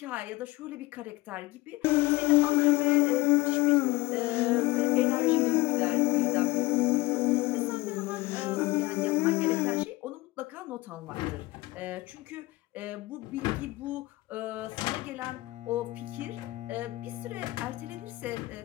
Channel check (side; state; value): right; quieter; 20.0 dB